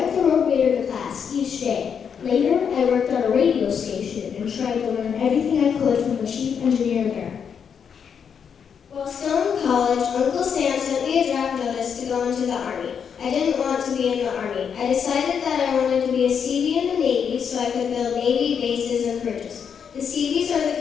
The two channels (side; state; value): right; quieter; 7.2 dB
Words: the road grader to class each day. Later, I worked on a radio station and tried to learn everything I could from the chief engineer there. While still in college, Uncle Sam sent me a draft notice to go into the Army. I didn't want to be in the Army. I decided that I wanted to be a Seabee in the Navy so I could build Navy bases and bridges. The Seabees are the